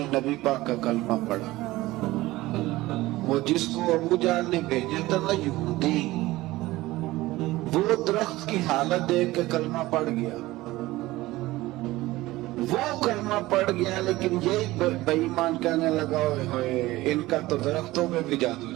نبی پاک کا کلمہ پڑھا۔ وہ جس کو ابو جہل نے بھیجا تھا نا یہودی، وہ درخت کی حالت دیکھ کے کلمہ پڑھ گیا، وہ کلمہ پڑھ گیا، لیکن یہ بے ایمان کہنے لگا ہوئے ان کا تو درختوں میں بھی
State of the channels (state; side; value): quieter; left; 18.3 dB